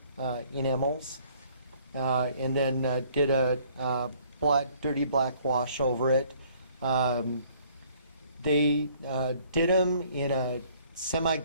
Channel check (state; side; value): inverted; both; correlation -0.60